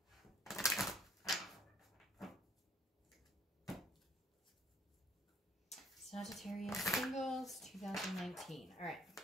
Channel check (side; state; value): both; normal; correlation 0.60